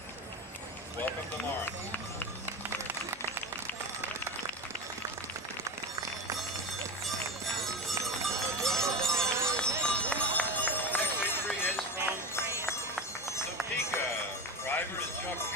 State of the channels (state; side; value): normal; both; correlation 0.22